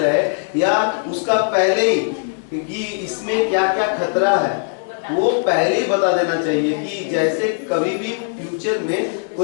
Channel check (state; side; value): silent; right; digital silence